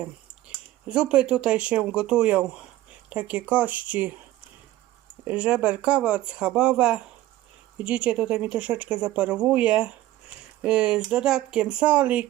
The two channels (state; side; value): quieter; left; 15.3 dB